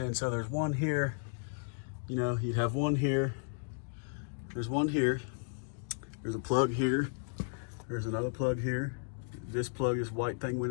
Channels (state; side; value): silent; right; digital silence